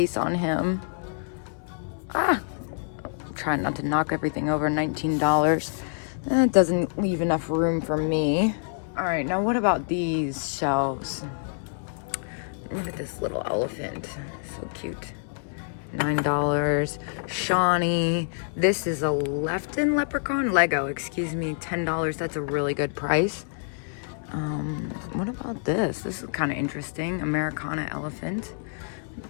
on him. I'm trying not to knock everything over. $19. That doesn't leave enough room for me. All right, now what about these shelves? Look at this little elephant, so cute. $9. Shawnee. This is a Lefton leprechaun, Lego, excuse me, $10. That's a really good price. What about this? This is kind of interesting. Americana elephant.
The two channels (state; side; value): silent; right; 60 dB below the other